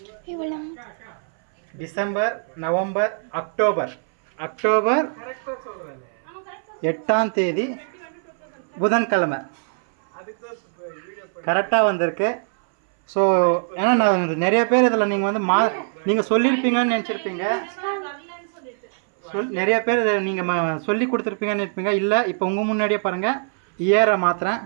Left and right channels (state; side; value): silent; left; 60 dB below the other